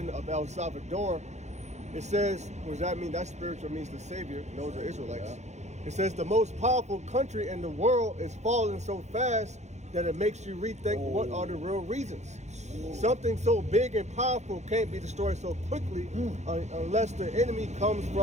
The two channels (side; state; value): left; late; 0.33 ms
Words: of El Salvador. It says, what does that mean? That spiritual means the savior. Those are Israelites. Yeah. It says the most powerful country in the world is falling so fast that it makes you rethink what are the real reasons. Something so big and powerful can't be destroyed so quickly unless the enemy comes